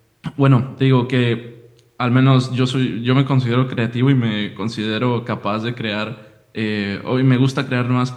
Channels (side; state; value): both; identical; correlation 1.00